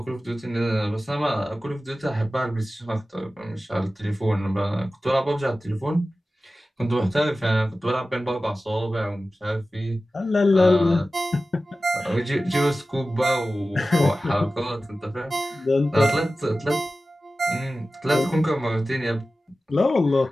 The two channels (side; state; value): both; normal; correlation 0.95